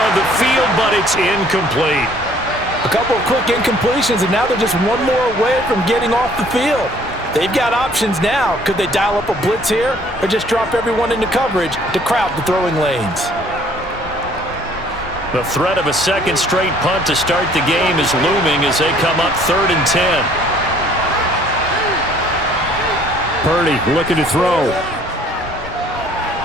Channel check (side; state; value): both; normal; correlation 0.58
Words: of the field, but it's incomplete. A couple of quick incompletions, and now they're just one more away from getting off the field. They've got options now. Could they dial up a blitz here or just drop everyone into coverage to crowd the throwing lanes? The threat of a second straight punt to start the game is looming as they come up 3rd and 10. Purdy looking to throw.